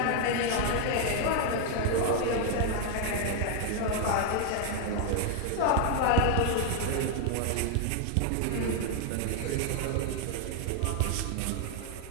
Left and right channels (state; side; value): different; both; correlation 0.00